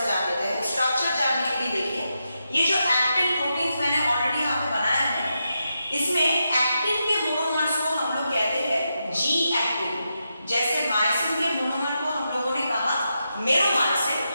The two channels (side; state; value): both; inverted; correlation -0.86